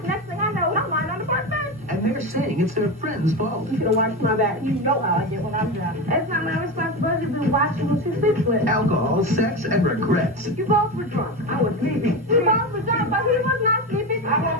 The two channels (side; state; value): both; normal; correlation 0.20